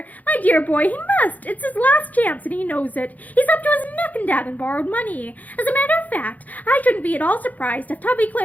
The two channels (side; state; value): right; late; 0.078 ms